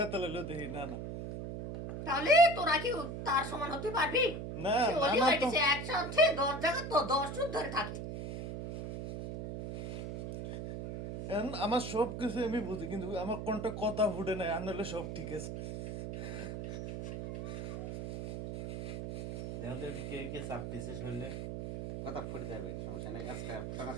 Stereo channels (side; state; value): right; noise; hum, 6 dB below the sound